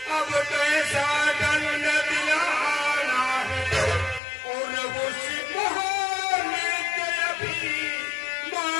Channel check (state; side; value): drops out; right; at 4.2 s